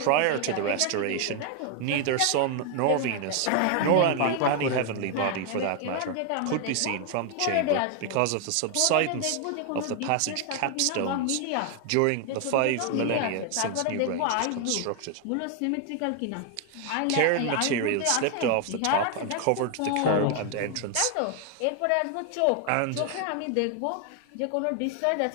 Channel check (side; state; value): both; different; correlation 0.00